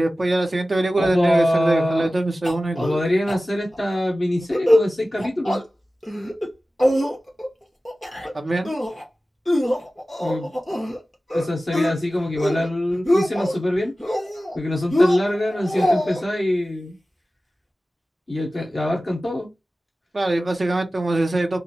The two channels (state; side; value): normal; both; correlation 0.96